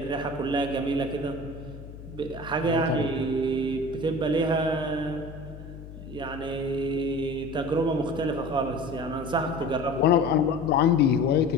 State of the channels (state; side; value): noise; left; hum, 14 dB below the sound